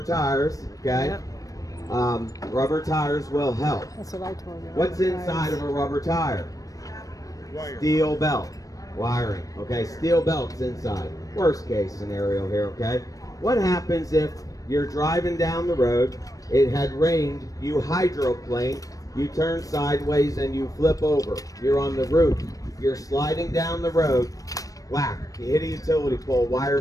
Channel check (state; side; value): late; right; 0.16 ms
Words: tires, okay? Yep. Rubber tires will help. That's what I told you. What's inside of a rubber tire? Steel belt. Wiring. Okay, steel belt's inside. Worst case scenario here, okay? What happens if you're driving down the road, it had rained, you hydroplane, you turn sideways and you flip over. You're on the roof. You're sliding down the road. Whack. You hit a utility pole.